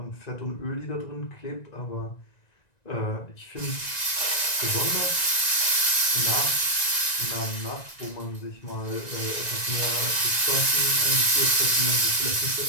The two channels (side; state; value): right; late; 1.9 ms